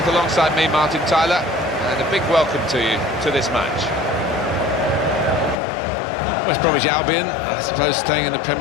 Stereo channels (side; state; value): right; drops out; at 5.6 s